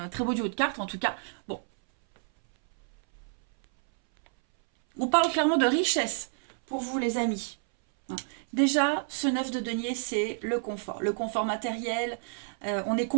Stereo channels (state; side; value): silent; left; 59 dB below the other